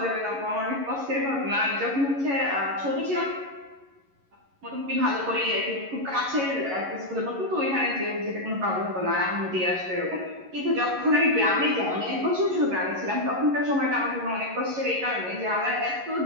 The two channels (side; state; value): left; late; 11 ms